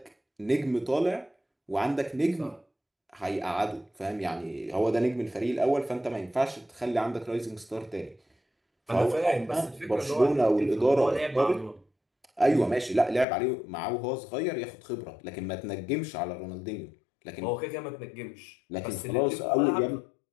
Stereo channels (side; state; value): right; drops out; at 13.2 s